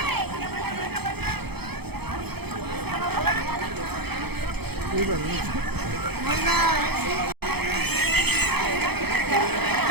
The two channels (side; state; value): left; late; 0.97 ms